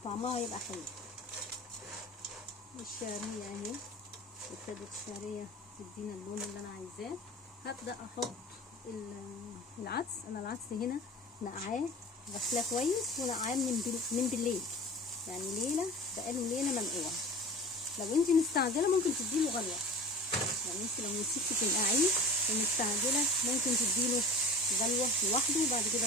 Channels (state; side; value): normal; both; correlation 0.38